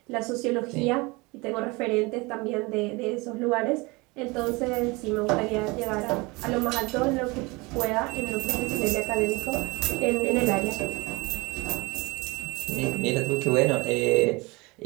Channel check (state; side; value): quieter; left; 25.0 dB